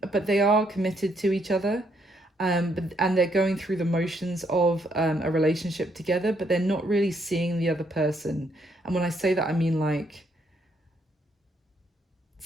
but they are committed to each other. And they're going through the motions of a relationship together, but they're not really seeing the other person. And when I say that, I mean like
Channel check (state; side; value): normal; both; correlation 0.73